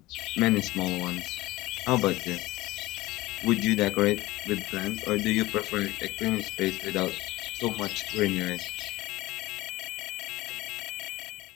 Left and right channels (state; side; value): quieter; right; 18.9 dB